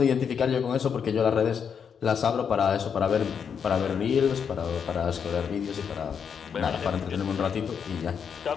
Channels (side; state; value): right; quieter; 7.1 dB